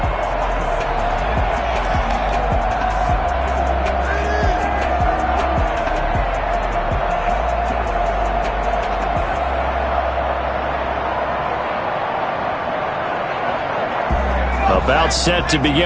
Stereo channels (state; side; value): identical; both; correlation 1.00